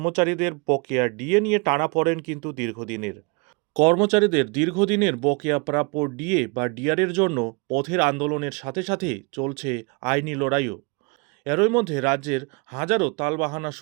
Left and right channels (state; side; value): quieter; left; 30.6 dB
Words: বকেয়া ডিএ নিয়ে টানাপোড়েন কিন্তু দীর্ঘদিনের। কর্মচারীদের দীর্ঘদিনের বকেয়া প্রাপ্য ডিএ বা ডিআরের জন্য পথের আন্দোলনের সাথে সাথে চলছে আইনি লড়াইও। এরই মধ্যে রাজ্যের হাজারো তালবাহানা